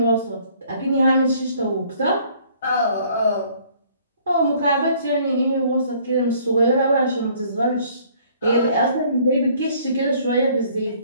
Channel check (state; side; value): inverted; both; correlation -0.59